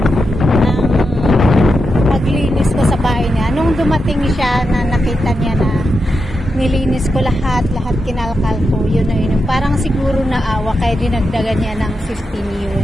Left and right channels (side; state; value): both; normal; correlation 0.87